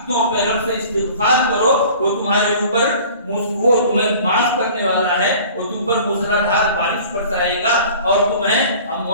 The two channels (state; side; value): inverted; both; correlation -0.46